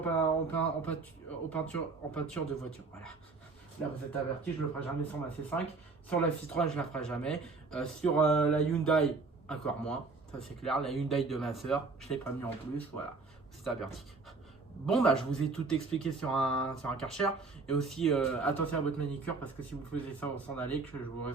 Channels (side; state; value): left; quieter; 4.0 dB